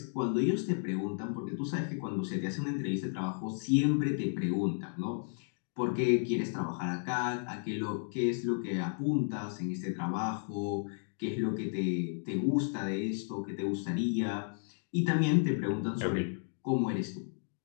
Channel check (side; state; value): right; silent; digital silence